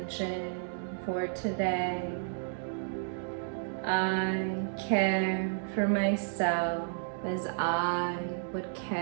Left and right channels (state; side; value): silent; left; digital silence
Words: for today. I care for myself as I would